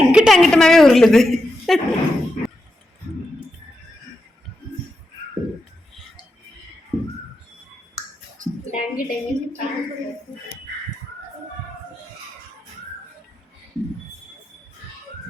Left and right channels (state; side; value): normal; both; correlation 0.87